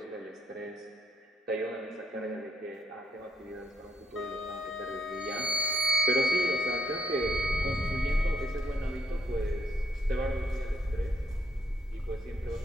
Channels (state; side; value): normal; both; correlation 0.75